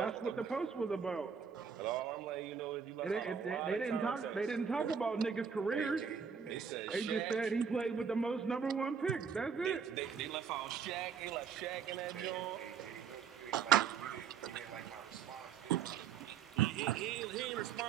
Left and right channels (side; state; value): left; quieter; 6.7 dB